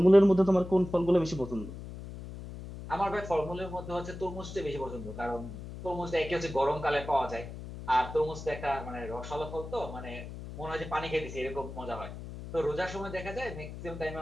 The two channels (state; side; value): noise; left; hum, 11 dB below the sound